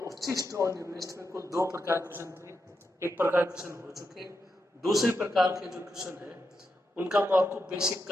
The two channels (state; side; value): normal; both; correlation 0.85